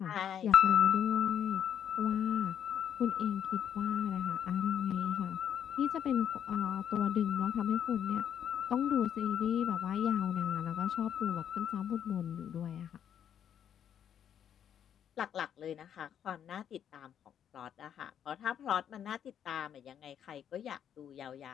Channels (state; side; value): quieter; right; 9.2 dB